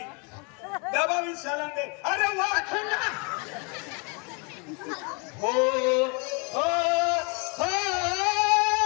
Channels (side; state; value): right; quieter; 33.6 dB